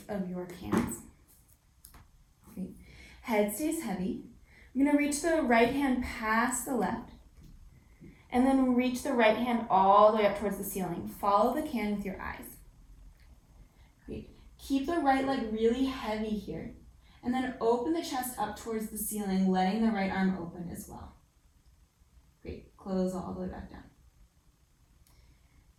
of your cans. Great. Head stays heavy. I'm going to reach the right hand past the left, and then reach the right hand all the way up towards the ceiling. Follow the can with your eyes. Great. Keep the right leg really heavy here, and then open the chest up towards the ceiling, letting the right arm open as well. Great. Close all the way back down.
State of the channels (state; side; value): identical; both; correlation 1.00